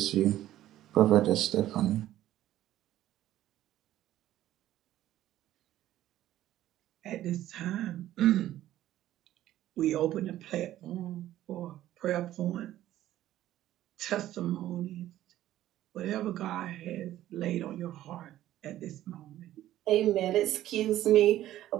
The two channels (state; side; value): quieter; left; 13.5 dB